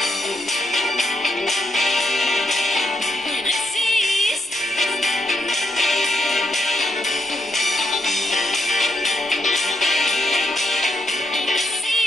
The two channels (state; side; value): normal; both; correlation 0.80